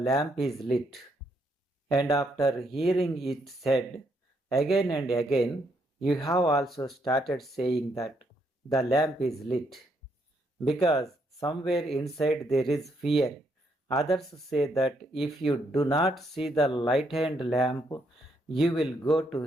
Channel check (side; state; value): both; normal; correlation 0.74